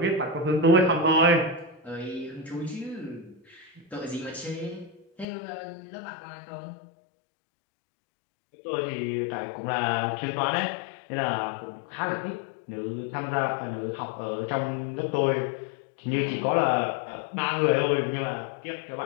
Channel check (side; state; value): right; drops out; at 5.2 s